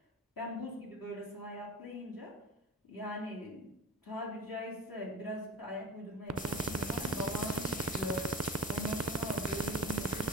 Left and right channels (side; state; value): both; normal; correlation 0.31